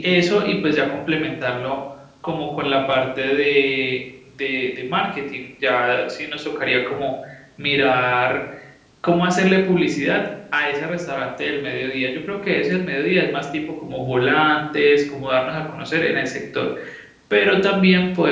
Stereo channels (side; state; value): both; identical; correlation 1.00